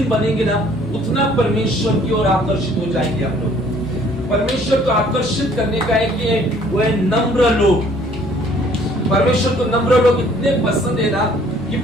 बनेंगे ना, उतना परमेश्वर की ओर आकर्षित हो जाएंगे हम लोग। परमेश्वर को आकर्षित करने का है कि वो है नम्र लोग। परमेश्वर को नम्र लोग इतने पसंद है ना कि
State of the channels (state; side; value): normal; both; correlation 0.58